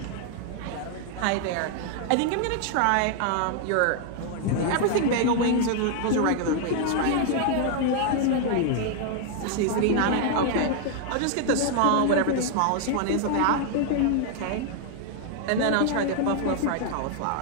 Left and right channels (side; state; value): both; different; correlation 0.00